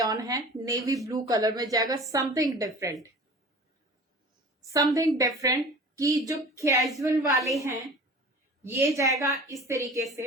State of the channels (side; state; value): both; normal; correlation 0.41